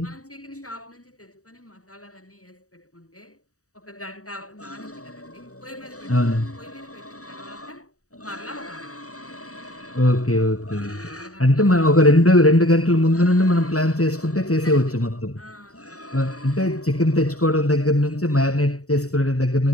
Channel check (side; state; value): right; late; 0.66 ms